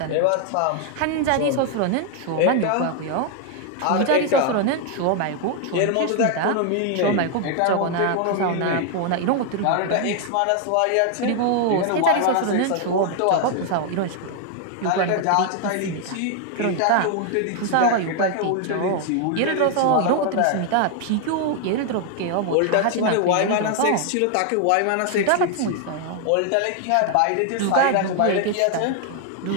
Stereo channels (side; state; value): both; different; correlation 0.00